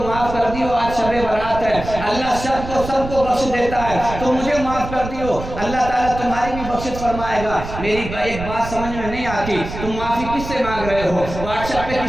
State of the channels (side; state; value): right; noise; rumble, 9 dB below the sound